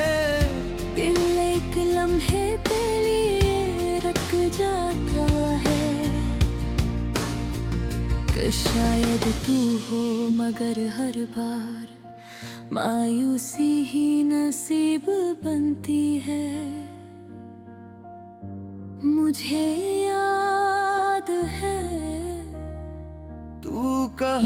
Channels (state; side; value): identical; both; correlation 1.00